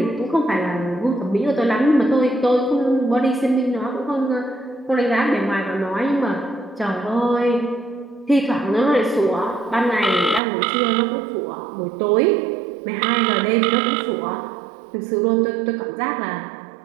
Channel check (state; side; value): drops out; left; at 10.4 s